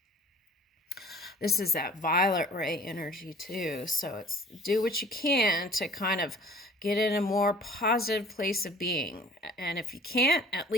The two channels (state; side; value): normal; both; correlation 0.48